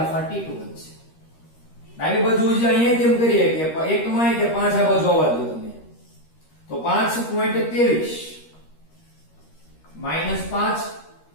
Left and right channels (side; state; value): right; late; 13 ms